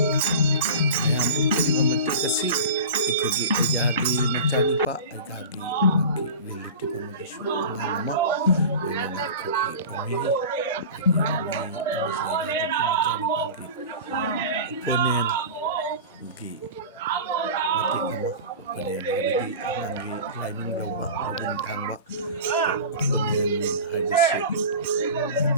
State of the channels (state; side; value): inverted; both; correlation -0.33